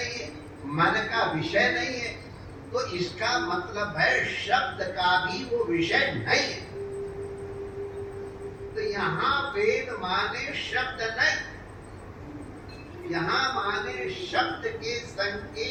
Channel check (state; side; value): identical; both; correlation 1.00